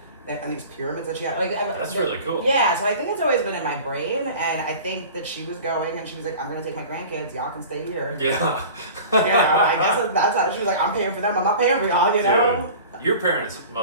and these pyramids that she had, like that's really cool. Yeah, so I think it's always been in my brain, and I think that she was going, and she was like, "I'm gonna take my grandkids. Y'all can stay here." Yeah. I guess that's how she was like. I'm paying for them. I'm not paying for y'all. You know. Dude, your parents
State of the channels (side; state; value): both; inverted; correlation -0.39